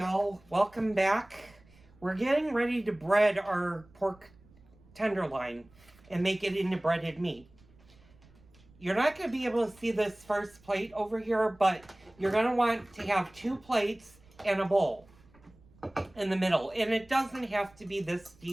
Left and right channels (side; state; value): right; noise; rumble, 27 dB below the sound